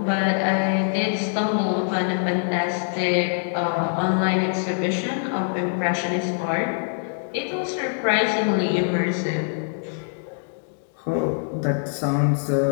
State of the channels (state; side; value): silent; right; digital silence